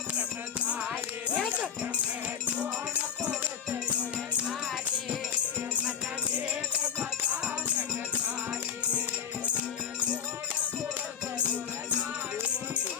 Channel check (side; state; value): right; quieter; 7.7 dB